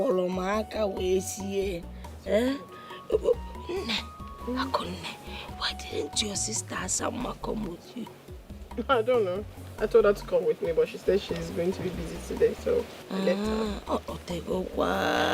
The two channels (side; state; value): both; identical; correlation 1.00